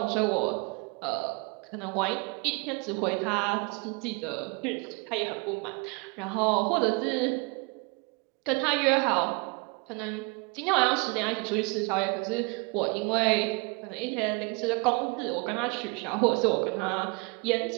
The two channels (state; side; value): quieter; left; 30.0 dB